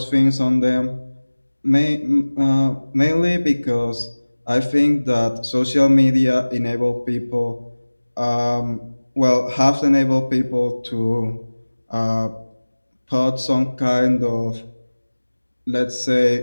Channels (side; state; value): both; inverted; correlation -1.00